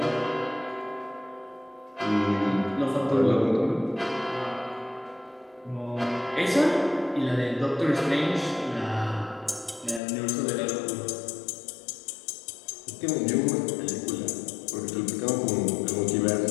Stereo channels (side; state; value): right; drops out; at 10.0 s